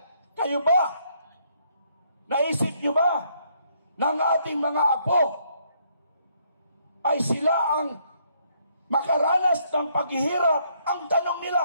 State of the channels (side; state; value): both; inverted; correlation -0.70